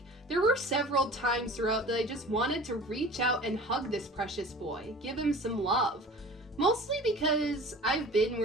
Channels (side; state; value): both; normal; correlation 0.42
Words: there were several times throughout that I just wanted to reach out and hug this precious boy, give him some love. Mostly because I've been